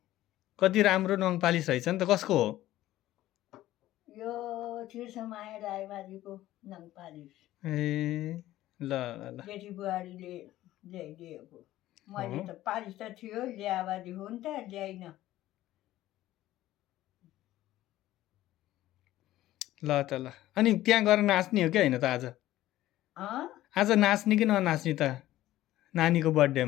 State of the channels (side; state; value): right; quieter; 14.9 dB